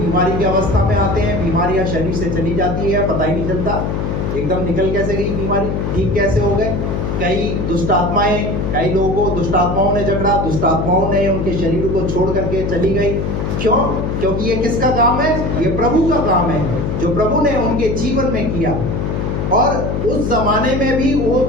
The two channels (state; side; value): noise; left; hum, 1 dB below the sound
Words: की अवस्था में आते हैं, बीमारियां शरीर से चली जाती है, पता ही नहीं चलता एकदम निकल कैसे गई बीमारी, ठीक कैसे हो गए। कई दुष्ट आत्माएं, कई लोगों को दुष्ट आत्माओं ने जकड़ा, दुष्ट आत्माओं ने उनके शरीर को छोड़ करके चली गई। क्यों? क्योंकि ये किसका काम है? ये प्रभु का काम है, जो प्रभु ने उनके जीवन में किया। और उस जमाने में भी वो